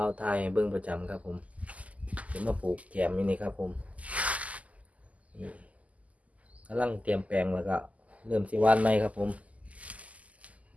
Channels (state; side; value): late; left; 0.071 ms